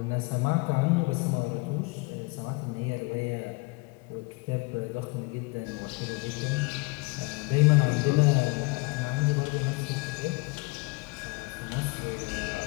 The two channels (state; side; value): quieter; right; 27.2 dB